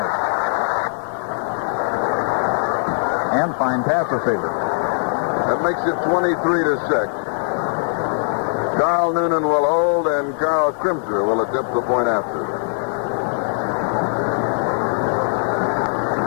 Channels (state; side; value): silent; right; digital silence